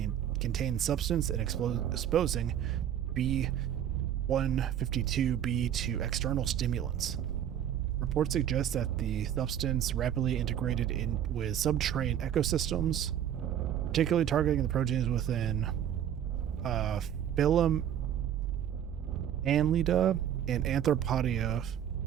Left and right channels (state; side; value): quieter; left; 10.1 dB